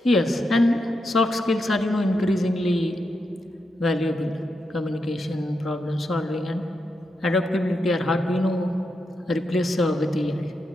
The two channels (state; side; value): normal; both; correlation 0.85